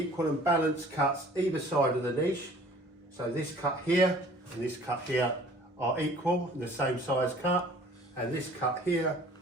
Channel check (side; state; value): both; normal; correlation 0.51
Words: and balanced cuts either side of the niche. So this cut here and this cut here are equal and the same size cut, and this cut here